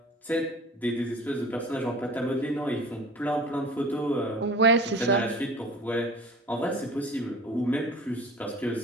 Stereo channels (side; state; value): both; normal; correlation 0.40